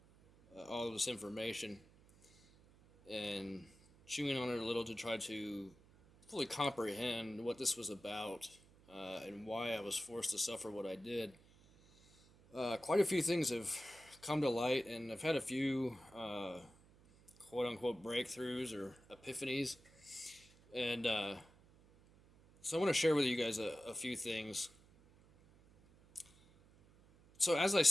all of this information and chewing on it a little to try to fully comprehend what this was about and why I was forced to suffer what I did, quite a few things have come to light, and I've had a few quote unquote breakthroughs or epiphanies. And so I want to share with you guys a few things. So as I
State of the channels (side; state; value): right; noise; hum, 26 dB below the sound